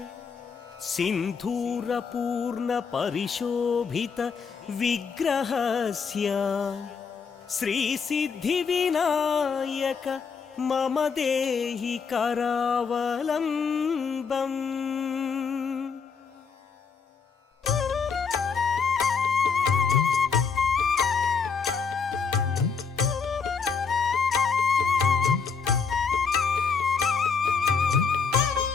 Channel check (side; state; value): right; quieter; 5.7 dB